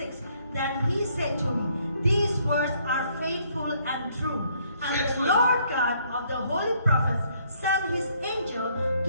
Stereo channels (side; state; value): both; inverted; correlation -0.67